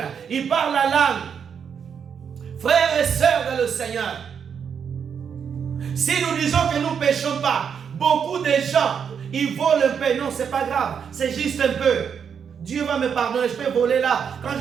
ils parlent la langue. Frères et sœurs dans le Seigneur, si nous disons que nous ne péchons pas, beaucoup de gens, ils volent un peu. Non, c'est pas grave, c'est juste un peu. Dieu va me pardonner, je peux voler là. Quand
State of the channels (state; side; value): quieter; left; 7.2 dB